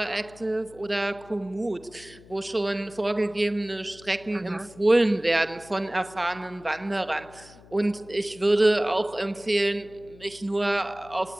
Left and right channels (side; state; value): left; noise; hum, 22 dB below the sound